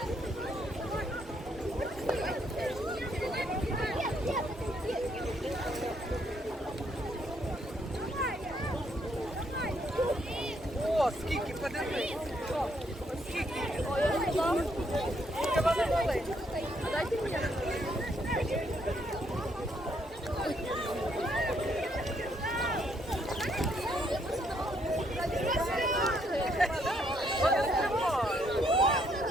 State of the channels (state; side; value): normal; both; correlation 0.72